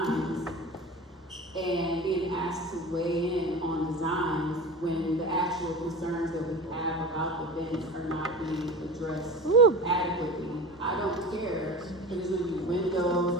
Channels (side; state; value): both; normal; correlation 0.33